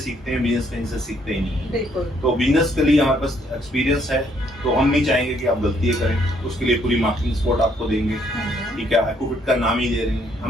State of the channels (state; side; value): normal; both; correlation 0.68